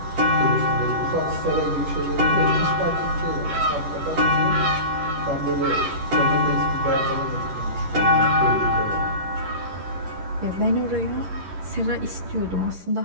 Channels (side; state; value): left; late; 11 ms